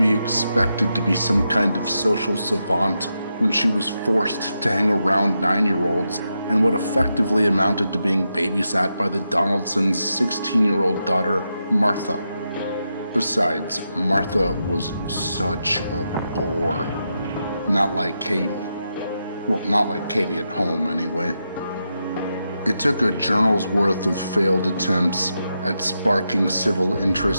expected to be some kind of social savant when she was forced to hang around 9-year-olds and what effectively amounted to being babysat by the Donaldsons' 16-year-old daughter, Martha? Besides, Martha was such a bore. Not like Katie. Well, not like Katie at home, anyway. It took a journal's worth of failed attempts at sparking civil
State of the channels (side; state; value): both; inverted; correlation -0.86